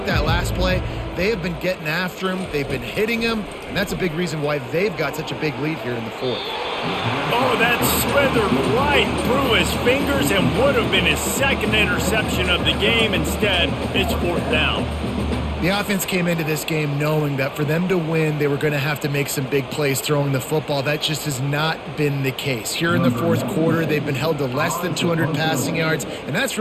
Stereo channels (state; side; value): identical; both; correlation 1.00